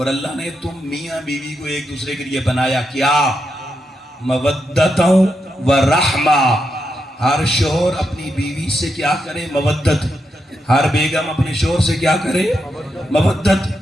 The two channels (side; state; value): both; normal; correlation 0.84